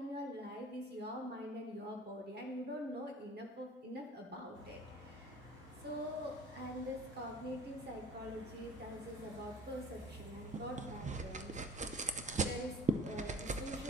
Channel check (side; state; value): both; normal; correlation 0.45